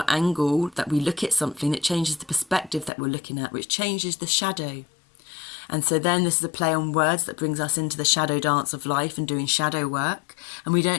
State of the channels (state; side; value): drops out; right; at 2.9 s